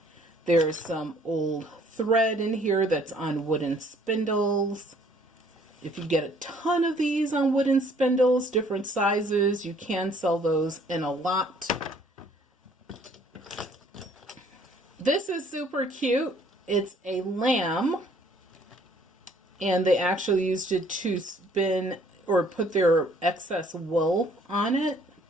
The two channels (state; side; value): normal; both; correlation 0.60